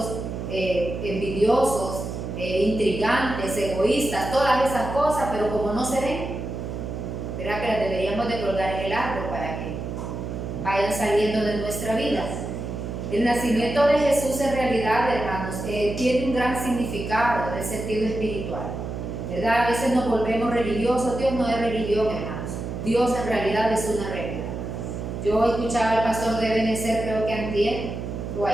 envidiosos, intrigantes, egoístas, todas esas cosas, pero como no se ven, ¿verdad? Que las deberíamos de colgar en el árbol para que vayan saliendo de nuestra vida. El nacimiento de Jesús en realidad, hermanos, tiene un gran significado en el sentido espiritual, ¿verdad? A veces nos volvemos religiosos. Dios no es religión, hermanos. Dios en realidad es una regla. Yo escuchaba al pastor de Benecer, creo que antier o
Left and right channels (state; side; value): noise; right; hum, 6 dB below the sound